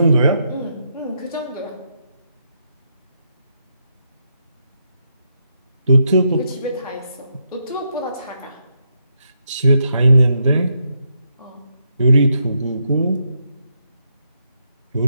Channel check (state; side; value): inverted; both; correlation -0.80